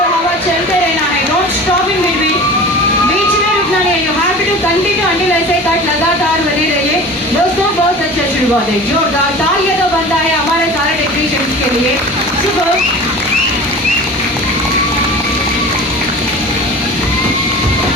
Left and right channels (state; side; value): normal; both; correlation 0.38